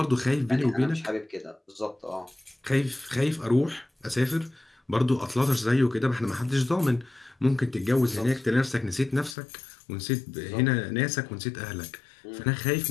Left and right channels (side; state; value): right; drops out; at 9.3 s